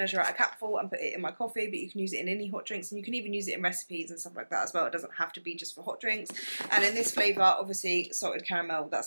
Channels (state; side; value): inverted; both; correlation -1.00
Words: out a capful and put it in my coffee, but you can use it in any hot drinks and you can even use it in recipes and stuff like that as well. It doesn't have to be just for hot drinks. And in this flavour, obviously salted caramel,